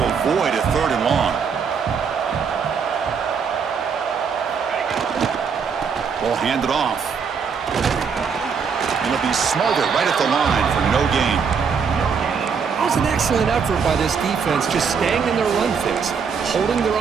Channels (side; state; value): left; quieter; 6.1 dB